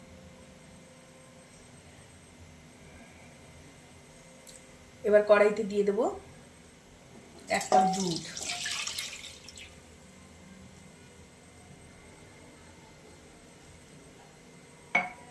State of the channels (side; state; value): both; identical; correlation 1.00